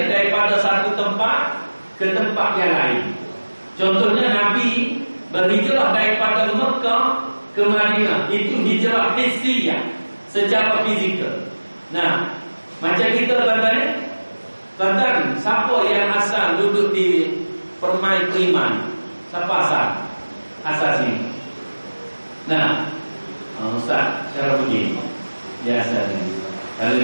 daripada satu tempat ke tempat yang lain. Contohnya Nabi berhijrah daripada Mekah ke Madinah. Itu hijrah hissiyah, secara fizikal. Macam kita tuan-tuan, siapa yang asal duduk di Permai Priman? Siapa asal? Asal sini. Ustaz, cara begini. Dia asal sini. Kalau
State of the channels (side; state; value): both; inverted; correlation -1.00